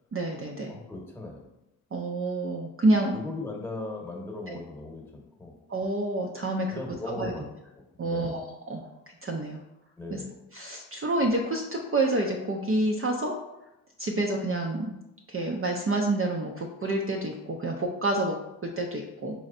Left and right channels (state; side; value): normal; both; correlation 0.39